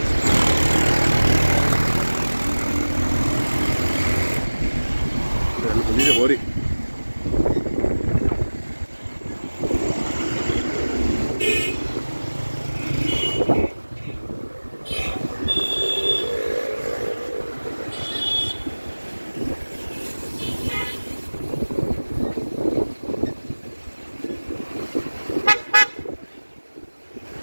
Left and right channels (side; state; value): both; inverted; correlation -1.00